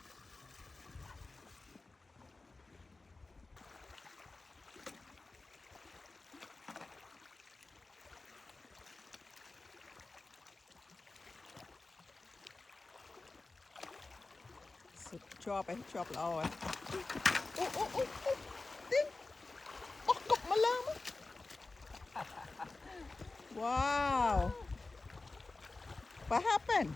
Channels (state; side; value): quieter; right; 3.4 dB